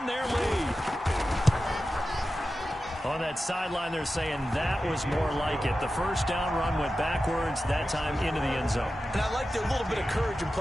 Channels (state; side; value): normal; both; correlation 0.93